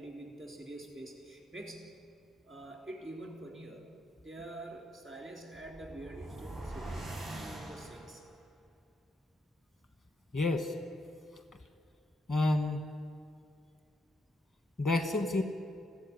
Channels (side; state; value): both; normal; correlation 0.79